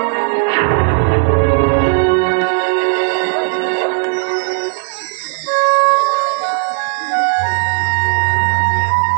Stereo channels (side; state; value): left; silent; digital silence